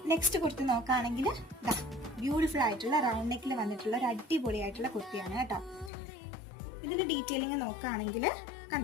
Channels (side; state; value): right; drops out; at 5.9 s